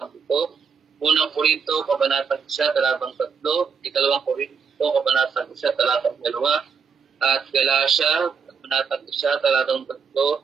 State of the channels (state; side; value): quieter; left; 6.0 dB